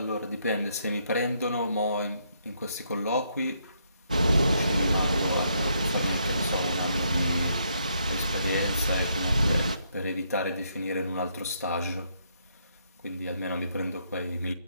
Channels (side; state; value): both; inverted; correlation -0.74